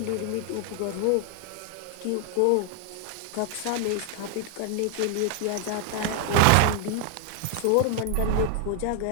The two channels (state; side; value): different; both; correlation 0.00